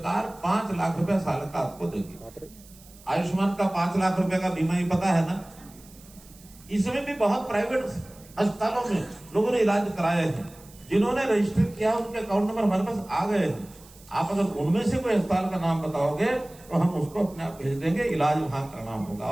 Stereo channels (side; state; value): right; noise; hiss, 23 dB below the sound